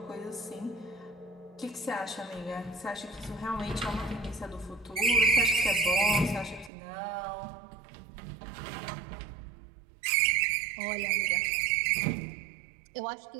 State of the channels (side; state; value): left; drops out; at 6.7 s